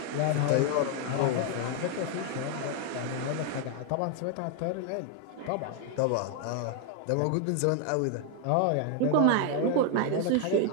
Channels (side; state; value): both; different; correlation 0.00